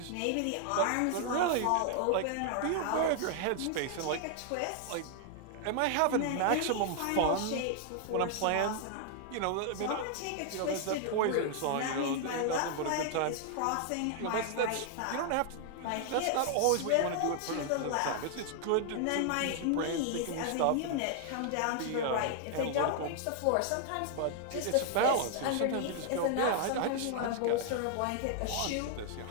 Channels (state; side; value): different; both; correlation 0.00